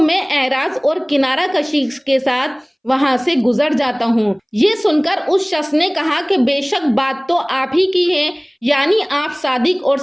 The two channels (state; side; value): identical; both; correlation 1.00